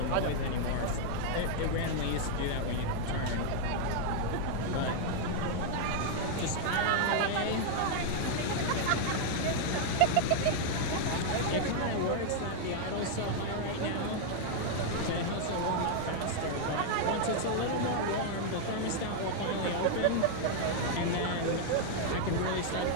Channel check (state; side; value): different; both; correlation 0.00